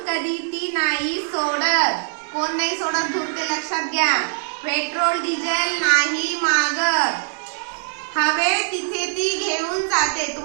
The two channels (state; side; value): silent; left; digital silence